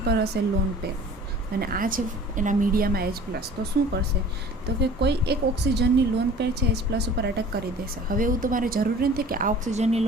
પર હશે લોન પેર અને આ છે એના મીડિયામાં H+. તો શું કરશે? તો કે કોઈ એક ઓક્સિજનની લોન પેર છે H+ ઉપર અટેક કરી દેશે. હવે એવું તમારે જરૂરી નથી કે આ ઓક્સિજનની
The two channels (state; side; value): normal; both; correlation 0.45